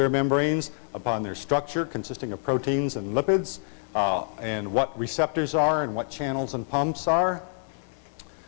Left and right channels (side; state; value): right; silent; digital silence